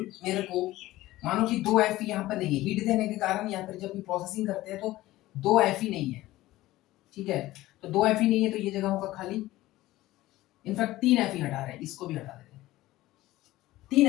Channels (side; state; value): right; quieter; 16.9 dB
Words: को मानो कि दो Fe यहाँ पर नहीं है, हीट देने के कारण या फिर जब भी प्रोसेसिंग करते हैं तो दो Fe नहीं है, ठीक है, तो दो Fe नहीं है तो ये जगह होगा खाली, इनफैक्ट 3 Fe हटा रहे हैं, इसको भी हटा देते हैं,